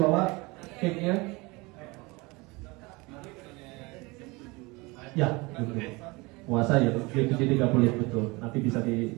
cake-nya? Ya, betul. Puasa ya, 7.30 betul. Nanti bisa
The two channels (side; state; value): left; quieter; 24.7 dB